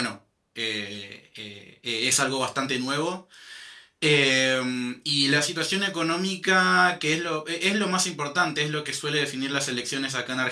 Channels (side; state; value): both; identical; correlation 1.00